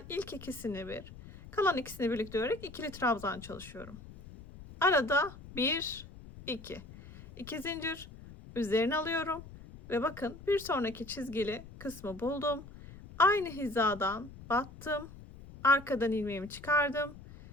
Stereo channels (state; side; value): noise; left; rumble, 17 dB below the sound